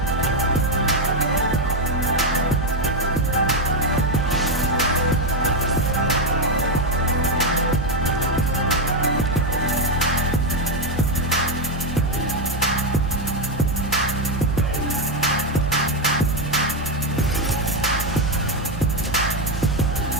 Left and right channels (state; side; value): normal; both; correlation 0.06